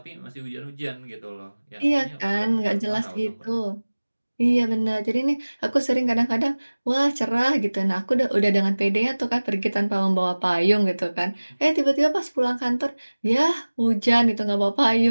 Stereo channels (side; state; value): both; inverted; correlation -1.00